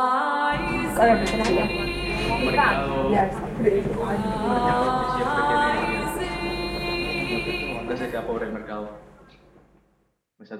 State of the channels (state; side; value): identical; both; correlation 1.00